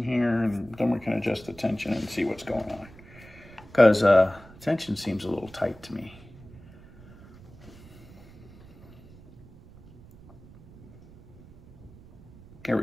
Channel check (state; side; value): noise; right; rumble, 21 dB below the sound